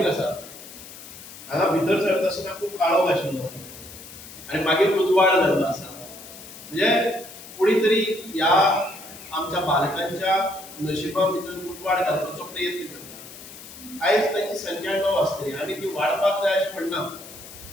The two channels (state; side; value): noise; left; hiss, 16 dB below the sound